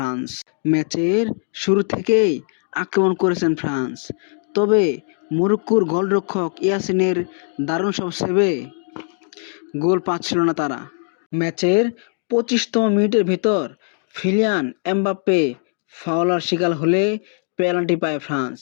ম্যাচের শুরু থেকেই আক্রমণ করেছেন ফ্রান্স, তবে মরক্কোর গোলরক্ষক ইয়াসিনের দারুণ সব সেভে গোল পাচ্ছিল না তারা। ম্যাচের ২৫তম মিনিটের ভেতর কিলিয়ান এমবাপ্পে ফাউলের শিকার হলে পেনাল্টি পায় ফ্রান্স,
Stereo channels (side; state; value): right; silent; 58 dB below the other